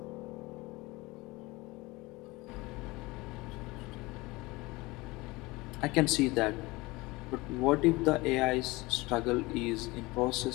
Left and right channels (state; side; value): quieter; right; 22.3 dB